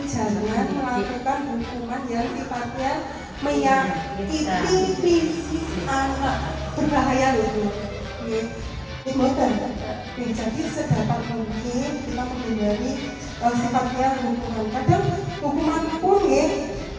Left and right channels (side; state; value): both; identical; correlation 1.00